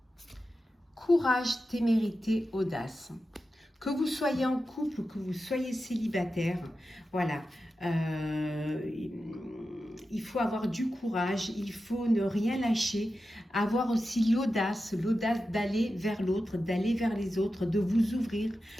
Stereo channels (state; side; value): normal; both; correlation 0.91